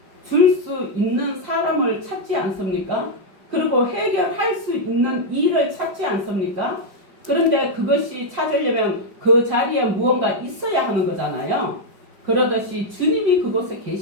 줄 수 있는 사람을 찾지 않습니까? 그리고 해결할 수 있는 일을 찾지 않습니까? 그런데 그것이 찾으려면 그 자리에 무언가 있어야 하는 거잖아요. 그러듯이 주님이 그곳에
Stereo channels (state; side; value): late; left; 5.1 ms